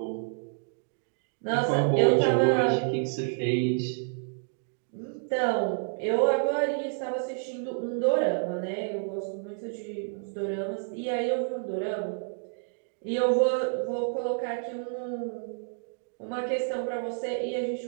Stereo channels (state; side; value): silent; left; digital silence